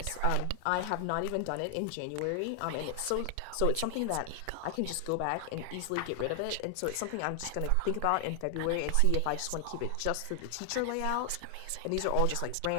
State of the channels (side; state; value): both; different; correlation 0.00